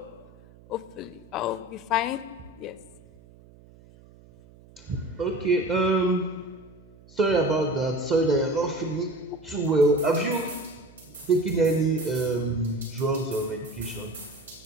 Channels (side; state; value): right; noise; hum, 24 dB below the sound